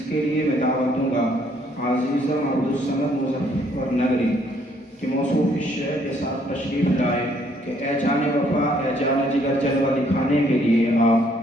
کے لیے میں دعوت دوں گا عزیزم عبدالصمد مظفر نگری کہ موصوف الشعر کے ساتھ تشریف لائے کہ اے جان وفا اے جان جگر جلوہ دکھانے کے لیے آپ،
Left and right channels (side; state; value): both; normal; correlation 0.66